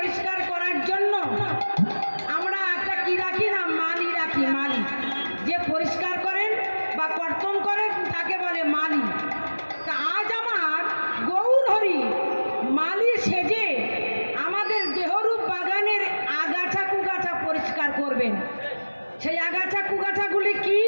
করার জন্য আমরা একটা কি রাখি না মালি রাখি। মালি যে পরিষ্কার করেন বা কর্তন করেন তাকে বলে মালি। তা আজ আমার গৌর হরি মালি সেজে আমাদের দেহরূপ বাগানের আগাছা কুগাছা পরিষ্কার করবেন। সেই আগাছা কুগাছাগুলি কি?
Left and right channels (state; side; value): inverted; both; correlation -1.00